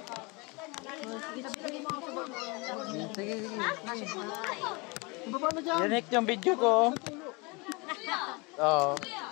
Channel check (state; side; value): quieter; right; 27.8 dB